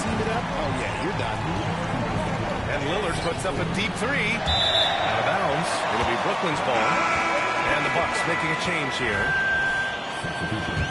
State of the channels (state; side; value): identical; both; correlation 1.00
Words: it up? Oh, yeah, you're done. And Lillard puts up a deep three. Out of bounds. It'll be Brooklyn's ball. And the Bucks making a change here.